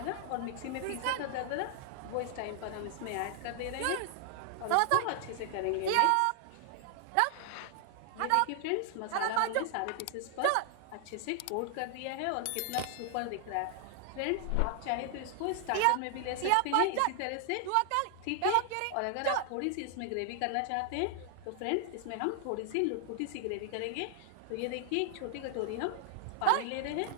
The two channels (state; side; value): different; both; correlation 0.00